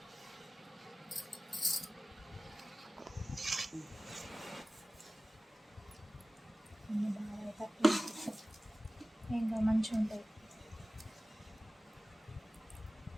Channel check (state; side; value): normal; both; correlation 0.97